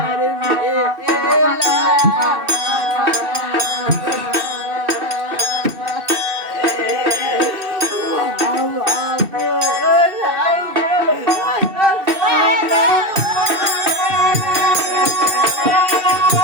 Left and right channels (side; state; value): left; late; 2.7 ms